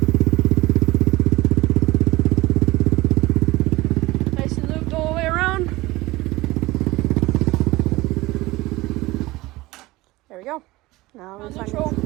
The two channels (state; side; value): quieter; left; 19.8 dB